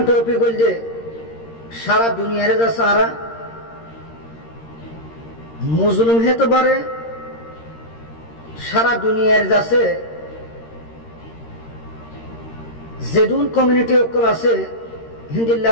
টপিক হইল যে সারা দুনিয়ারে যা সারা মুসলিম হতে পারে সারা দুনিয়ার যাচ্ছে যেদুন কমিউনিটি অকল আছে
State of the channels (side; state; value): right; late; 13 ms